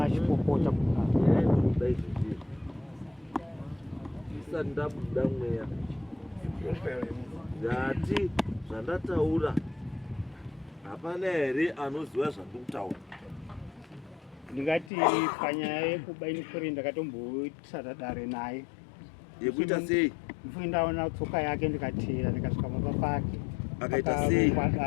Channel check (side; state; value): right; drops out; at 14.9 s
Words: isati ndabuda mweya ndati zvandataura hapana here anoziva zvandiri kutaura? Ndingati panyaya yekuba ini Koreni ndakatombotsata dare naye. Yekuita sei? Mfui ndaona tsoka yake ndikatera ndikasvika mumba pake. Akaita sei?